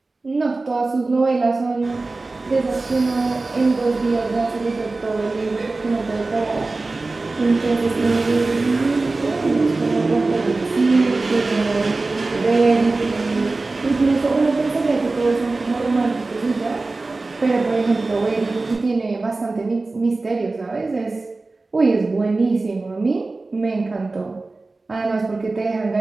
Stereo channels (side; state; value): left; quieter; 3.4 dB